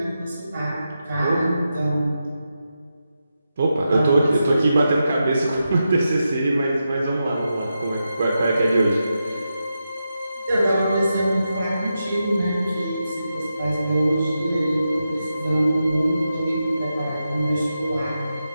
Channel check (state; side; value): inverted; both; correlation -0.88